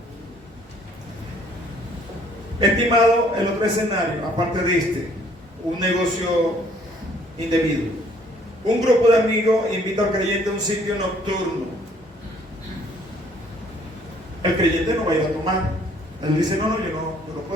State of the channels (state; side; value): normal; both; correlation 0.61